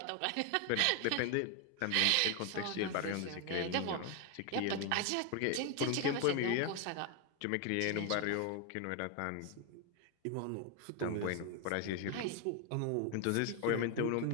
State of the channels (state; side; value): different; both; correlation 0.01